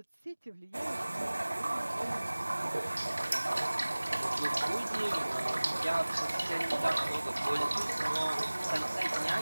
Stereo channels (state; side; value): inverted; both; correlation -1.00